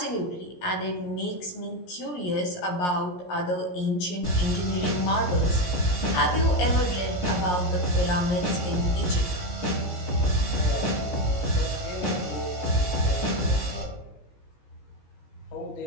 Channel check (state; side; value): late; right; 17 ms